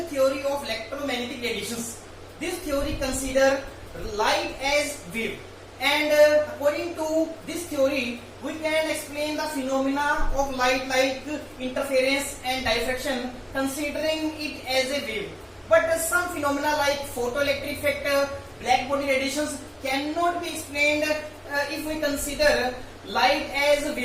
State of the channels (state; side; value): identical; both; correlation 1.00